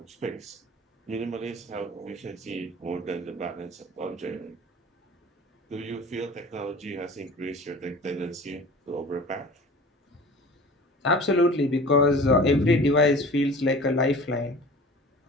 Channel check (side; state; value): both; normal; correlation 0.41